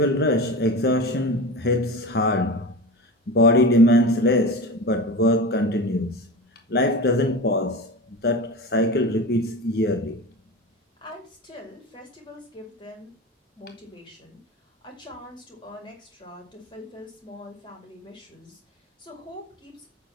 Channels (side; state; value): both; normal; correlation 0.28